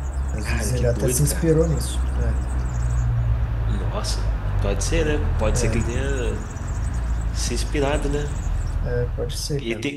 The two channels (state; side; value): identical; both; correlation 1.00